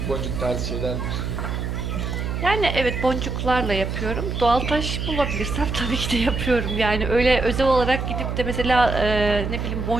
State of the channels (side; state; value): right; noise; hum, 3 dB below the sound